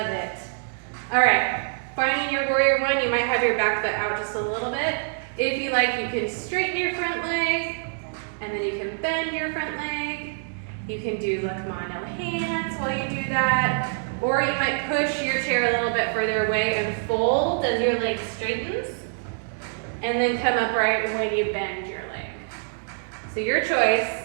it. All right, finding your warrior 1, you might have your back foot out just a little bit. If you like, you can straighten your front leg, and then you can bend your front leg. You can do look ma, no hands while you do that. Or you might push your chair a little bit further away and fold as your leg straightens. And then come upright when you bend your leg. So your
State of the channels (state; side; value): silent; left; digital silence